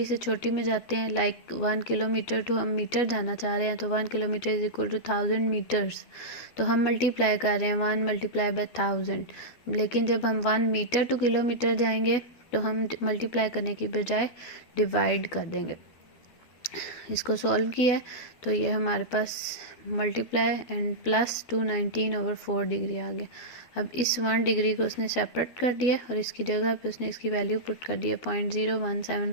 से छोटी में जाते हैं, लाइक 1 किलोमीटर टू हम मीटर जाना चाह रहे हैं, तो 1 kilometre is equal to 1000 metres, तो हम मल्टीप्लाई कर रहे हैं 1 मल्टीप्लाई बाय 1000। लेकिन जब हम 1 मीटर टू किलोमीटर जाएंगे तो हम मल्टीप्लाई करने की बजाय डिवाइड कर देंगे। इसको सॉल्व किया है तो ये हमारे पास multiply and plus 219 over 4 degree आ गया। अब इस 1 डिग्री को उसने सेपरेट कर दिया और इसकी जगह पे उसने इसकी वैल्यू पुट कर दिया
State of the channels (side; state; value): right; late; 12 ms